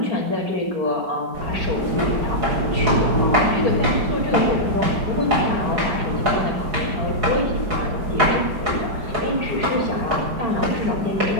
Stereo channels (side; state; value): left; late; 5.1 ms